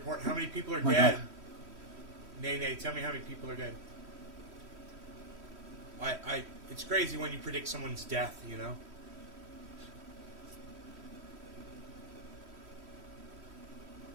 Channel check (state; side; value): late; left; 3.1 ms